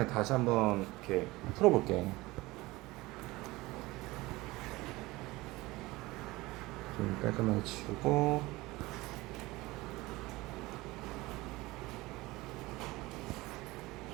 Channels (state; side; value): quieter; left; 20.5 dB